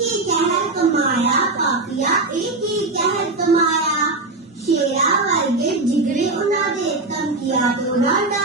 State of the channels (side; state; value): left; quieter; 3.2 dB